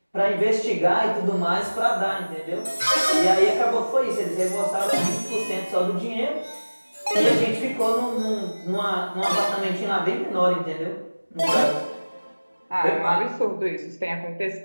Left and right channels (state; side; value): inverted; both; correlation -1.00